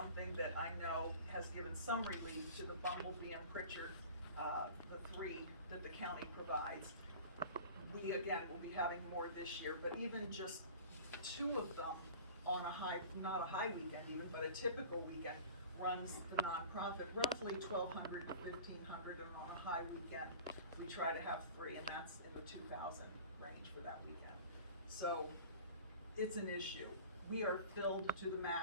that I know has given some relief to the Bumblebee and Pritchard, the three that the county provides. We, again, will be having more this year, but even just two of them on not a high weekend even, but a typical weekend, runs the nonprofit roughly $1,200 to $1,500, and on a high weekend, we try to have three, and that's in the 2,000 range for that weekend. So it's an issue. We are filled to the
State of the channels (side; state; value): both; inverted; correlation -0.40